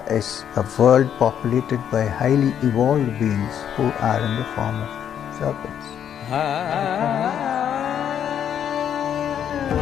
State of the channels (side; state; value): right; quieter; 9.1 dB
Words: is a world populated by highly evolved beings who are in the form of serpents.